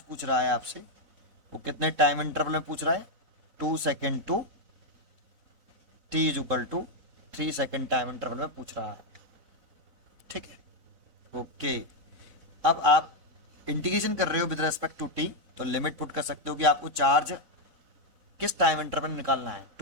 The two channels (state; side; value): late; left; 4.0 ms